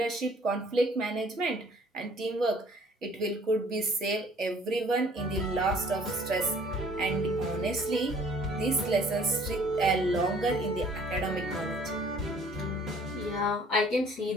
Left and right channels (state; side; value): normal; both; correlation 0.56